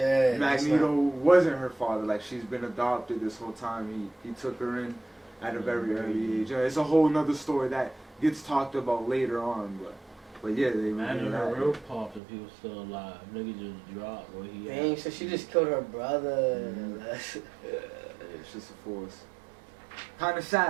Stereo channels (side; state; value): left; drops out; at 12.2 s